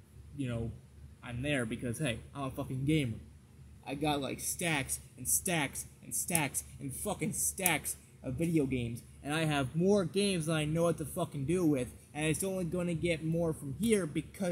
you know, I'm there, because hey, I'm a fucking gamer. I got like stacks and stacks and stacks and fucking stacks of video games, and I have more games than I know what to fucking do with, and it's only gonna get more from here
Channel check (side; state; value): both; identical; correlation 1.00